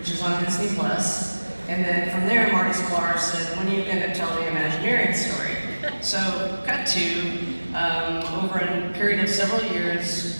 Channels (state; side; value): inverted; both; correlation -1.00